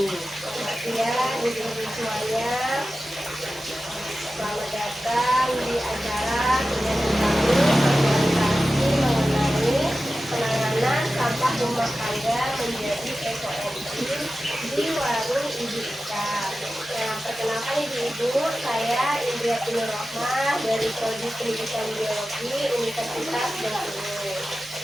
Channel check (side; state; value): both; normal; correlation 0.94